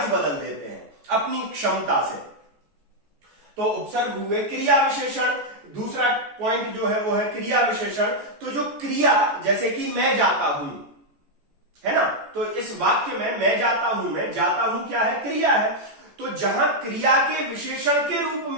बदल देते हैं अपनी क्षमता से। तो उपसर्ग हुए। क्रिया विशेषण, दूसरा पॉइंट जो है वो है क्रिया विशेषण। तो जो क्रिया, जैसे कि मैं जाता हूं, है ना, तो इस वाक्य में मैं जाता हूं, मैं जाता हूं क्या है, क्रिया है। तो जहां क्रिया के विशेषण के रूप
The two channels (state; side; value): late; left; 14 ms